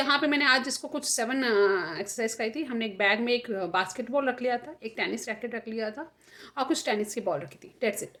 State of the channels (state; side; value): identical; both; correlation 1.00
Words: पे मैंने आज इसको कुछ 7 एक्सरसाइज कराई थी. हमने एक बैग में एक बास्केटबॉल रख लिया था, एक टेनिस रैकेट रख लिया था और कुछ टेनिस की बॉल रखी थी. डेट्स इट,